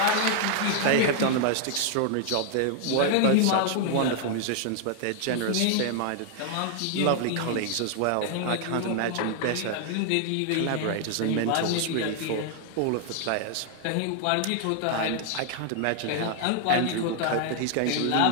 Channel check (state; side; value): different; both; correlation 0.00